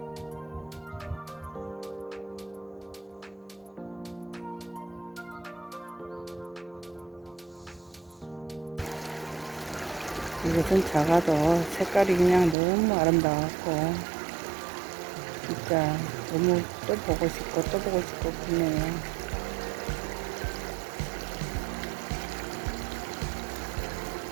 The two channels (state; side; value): drops out; left; at 12.6 s